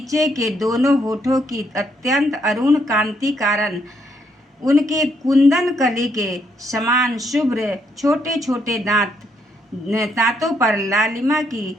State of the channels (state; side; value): normal; both; correlation 0.73